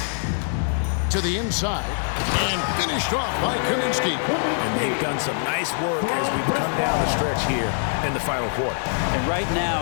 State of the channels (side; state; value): right; silent; digital silence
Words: To the inside. And finished off by Kaminsky. And they've done some nice work as we've come down the stretch here in the final quarter. And right